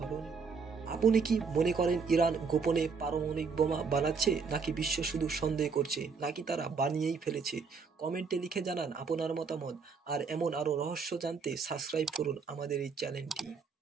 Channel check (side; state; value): left; quieter; 5.3 dB